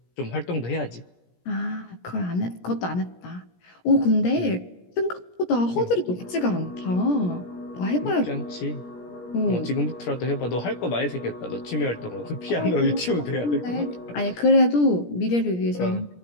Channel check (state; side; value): late; right; 17 ms